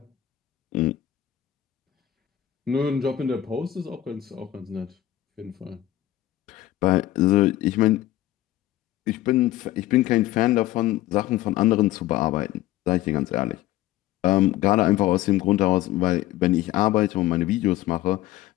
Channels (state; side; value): quieter; right; 14.0 dB